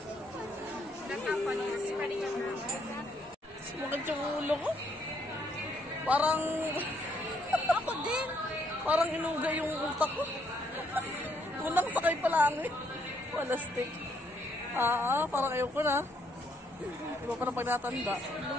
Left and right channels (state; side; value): normal; both; correlation 0.71